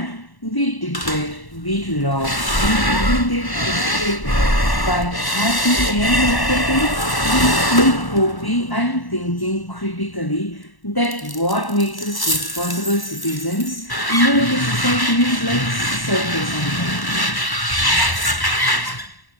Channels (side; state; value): right; late; 1.1 ms